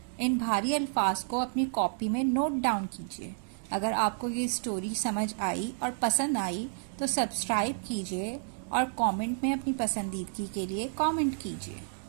इन भारी अल्फाज को अपनी कॉपी में नोट डाउन कीजिए। अगर आपको ये स्टोरी समझ आई और पसंद आई तो सब्सक्राइब कीजिए और कमेंट में अपनी पसंदीदगी के लिए कमेंट कीजिए।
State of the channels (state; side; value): silent; left; digital silence